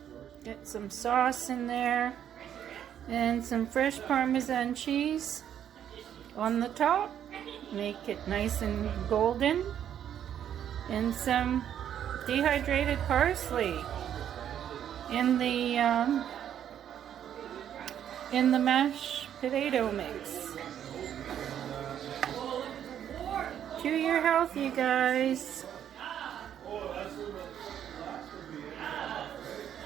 Get some sauce in there and some fresh Parmesan cheese on the top. Make it nice and golden. And some dehydrated parsley in the mashed potato mix. To your health, you guys.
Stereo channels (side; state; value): left; quieter; 9.8 dB